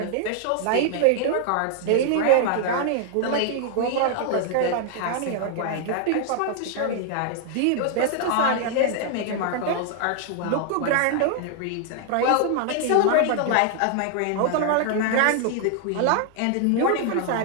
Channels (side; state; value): both; different; correlation 0.00